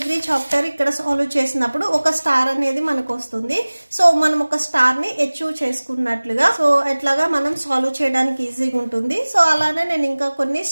చాప్టర్ ఇక్కడ సాల్వ్ చేసినప్పుడు ఒక స్టార్ అనేది మనకు వస్తుంది. సో మనం ఒక స్టార్ ని అచీవ్ చేసుకున్నట్లుగా సో ఎట్లాగా మనం సాల్వ్ చేయడానికి ఈజీగా ఉంటుంది. సో అలానే నేను ఇంకా కొన్ని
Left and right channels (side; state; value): both; inverted; correlation -1.00